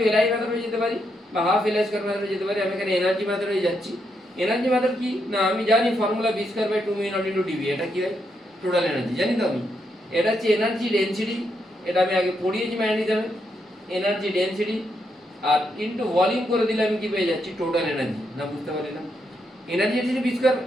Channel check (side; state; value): both; normal; correlation 0.80